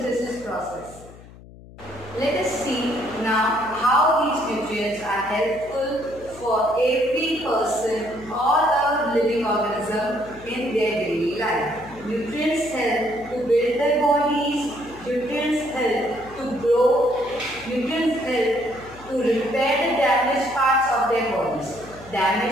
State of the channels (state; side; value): noise; left; hum, 20 dB below the sound